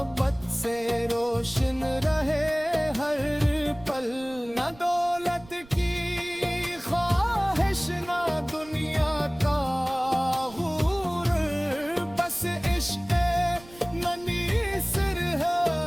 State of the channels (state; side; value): noise; right; rumble, 22 dB below the sound